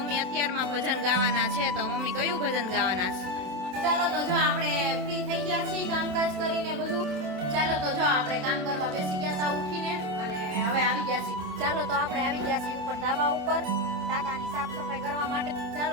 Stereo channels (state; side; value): late; left; 27 ms